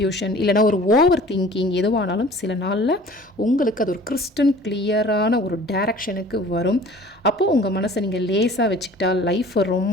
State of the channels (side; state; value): both; normal; correlation 0.47